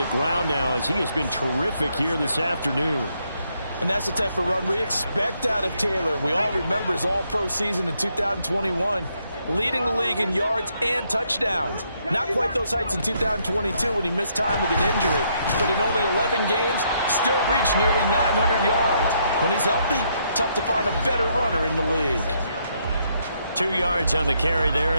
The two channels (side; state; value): both; inverted; correlation -0.74